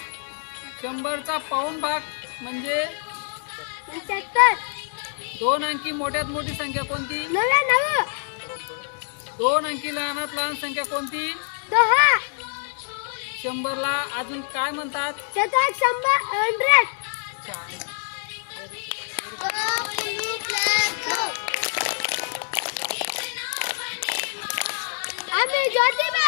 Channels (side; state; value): right; silent; 62 dB below the other